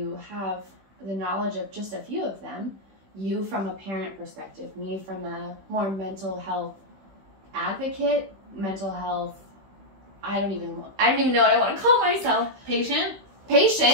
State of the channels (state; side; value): late; left; 15 ms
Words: have the knowledge of just a few of them, you from a parent perspective, me from a more mental health advocate, mental health, I don't even know what I want to call myself. Patient.